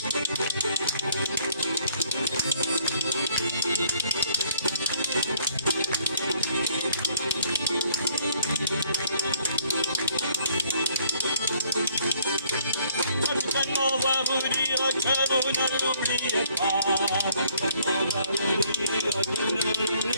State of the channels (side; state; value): both; inverted; correlation -0.64